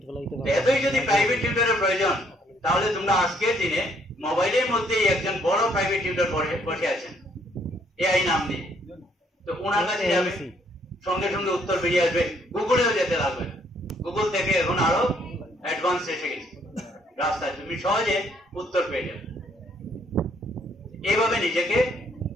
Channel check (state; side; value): normal; both; correlation 0.67